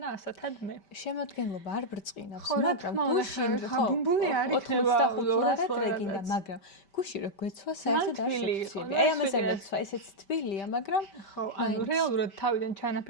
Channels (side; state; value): right; late; 5.1 ms